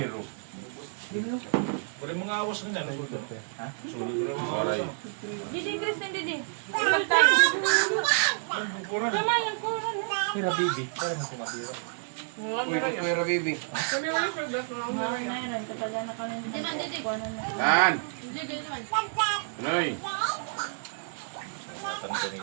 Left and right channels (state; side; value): silent; left; digital silence